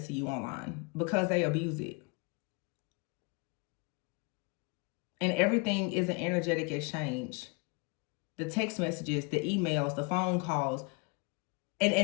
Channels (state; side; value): quieter; right; 30.0 dB